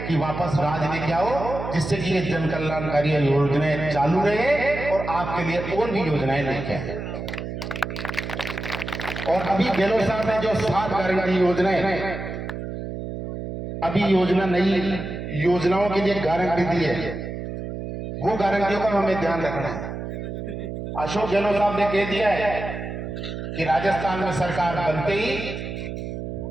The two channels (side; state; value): right; noise; hum, 7 dB below the sound